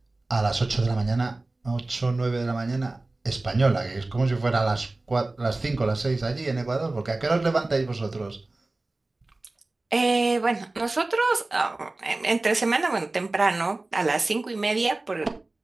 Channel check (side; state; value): left; quieter; 3.0 dB